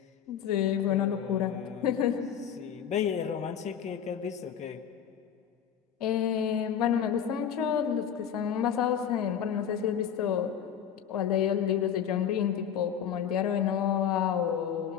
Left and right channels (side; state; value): right; quieter; 8.6 dB